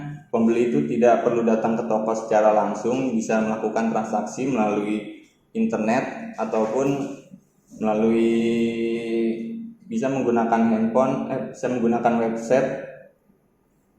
pembeli itu tidak perlu datang ke toko secara langsung, bisa melakukan transaksi melalui internet ataupun bisa menggunakan handphone, bisa menggunakan website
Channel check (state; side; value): identical; both; correlation 1.00